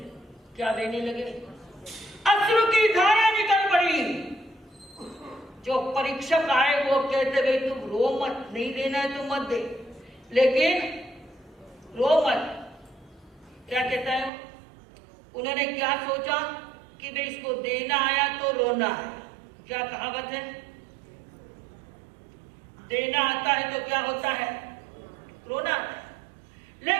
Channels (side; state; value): left; drops out; at 14.3 s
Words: क्या बहने लगे? अश्रु की धारा निकल पड़ी। जो परीक्षक आए वो कहते भाई तुम रो मत, नहीं देना है तो मत दे, लेकिन रो मत। क्या कहता है? उन्होंने क्या सोचा कि भाई इसको देना आया तो रोना है। क्या कहावत है? देना आता है तो क्या होता है? रोना आता है।